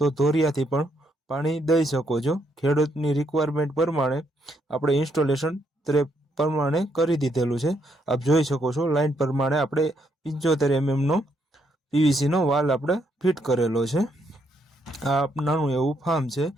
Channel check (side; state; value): both; normal; correlation 0.75